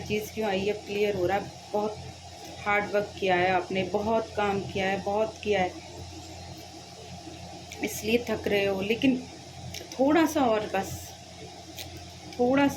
क्यों आई, अब क्लियर हो रहा है। बहुत हार्ड वर्क किया है आपने, बहुत काम किया है, बहुत किया है, इसलिए थक रहे हो। लेकिन थोड़ा सा और, बस थोड़ा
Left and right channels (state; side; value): identical; both; correlation 1.00